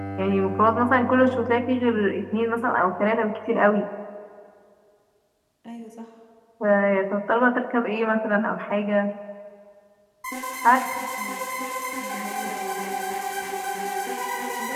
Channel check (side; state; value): both; identical; correlation 1.00